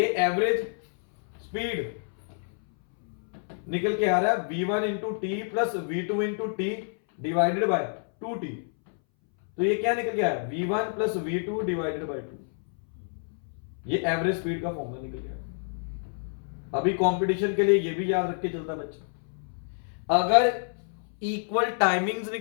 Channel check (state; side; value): silent; right; 59 dB below the other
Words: एवरेज स्पीड निकल के आ रहा है v1 into T plus v2 into T divided by 2t। तो ये क्या निकल के आया v1 plus v2 divided by 2। ये एवरेज स्पीड का फॉर्मूला निकल गया। अभी कंपटीशन के लिए ये भी याद रख के चलता बच्चा, अगर इक्वल टाइमिंग्स